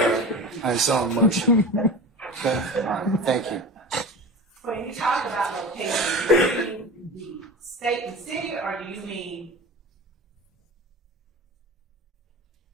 on its own motion. Okay? All right, thank you. When you talk about location, do you mean the state and city, or do you mean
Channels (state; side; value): normal; both; correlation 0.32